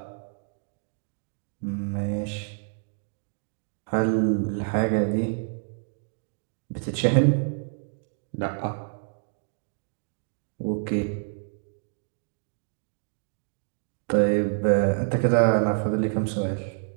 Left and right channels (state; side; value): silent; left; 59 dB below the other